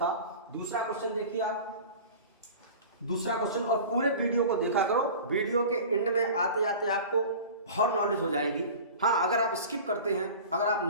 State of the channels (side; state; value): both; inverted; correlation -0.37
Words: दूसरा क्वेश्चन देखिए आप, दूसरा क्वेश्चन, और पूरे वीडियो को देखा करो, वीडियो के एंड में आते आते आपको बहुत नॉलेज हो जाएगी। हाँ, अगर आप स्किप करते हैं, अगर आप